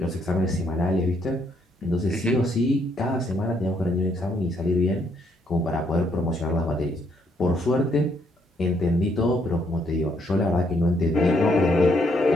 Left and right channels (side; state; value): both; normal; correlation 0.71